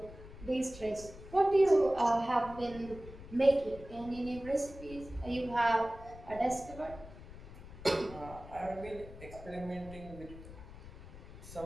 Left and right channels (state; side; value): noise; left; rumble, 15 dB below the sound